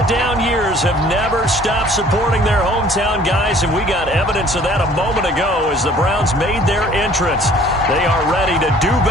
down years, have never stopped supporting their hometown guys, and we got evidence of that a moment ago as the Browns made their entrance. They are ready to do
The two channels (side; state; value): both; normal; correlation 0.54